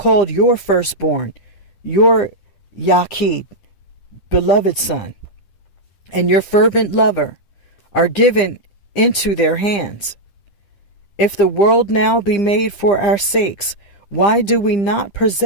your firstborn, your Yaqid, beloved son, and your fervent lover, are given into their hands. If the world now be made for our sakes, why do we not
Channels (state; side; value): late; right; 9.9 ms